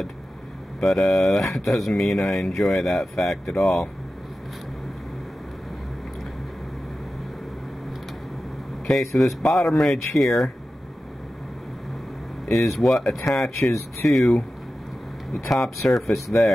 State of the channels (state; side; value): normal; both; correlation 0.94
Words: but that doesn't mean I enjoy that fact at all. Okay, so this bottom ridge here is what attaches to the top surface